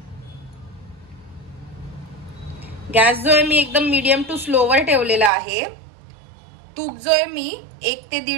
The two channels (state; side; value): drops out; left; at 5.3 s